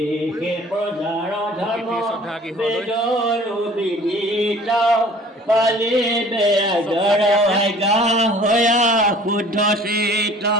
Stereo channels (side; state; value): both; normal; correlation 0.49